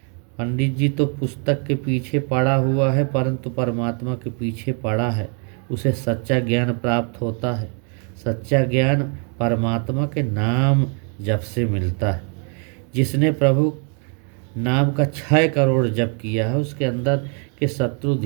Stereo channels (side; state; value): left; quieter; 39.9 dB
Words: पंडित जी तो पुस्तक के पीछे पड़ा हुआ है परंतु परमात्मा के पीछे पड़ा है, उसे सच्चा ज्ञान प्राप्त होता है। सच्चा ज्ञान परमात्मा के नाम जप से मिलता है। जिसने प्रभु नाम का 6 करोड़ जप किया है उसके अंदर के शत्रु